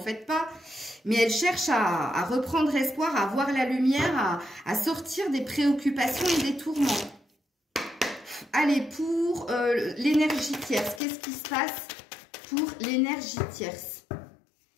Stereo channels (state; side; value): drops out; right; at 11.0 s